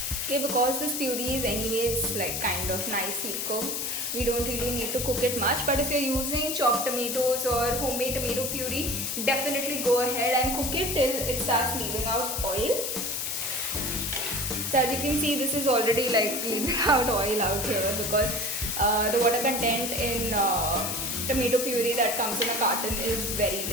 Okay, because this puree is anyways like kind of nicely cooked, we don't really need to cook it much. But if you're using chopped tomatoes or homemade tomato puree, definitely go ahead and cook it till it starts leaving out oil. So as you can see, this is already like leaving out oil out here because the water content in tomato puree that comes in a carton is very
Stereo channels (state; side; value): noise; left; hiss, 2 dB below the sound